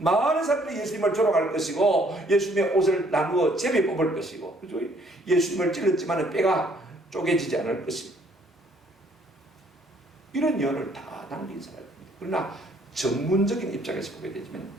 사람들이 예수님을 조롱할 것이고 예수님의 옷을 나누어 제비 뽑을 것이고, 그죠? 예수님을 찔렀지만 뼈가 쪼개지지 않을 것이고, 이런 예언을 다 남긴 사람입니다. 그러나 전문적인 입장에서 보게 되지만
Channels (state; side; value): normal; both; correlation 0.63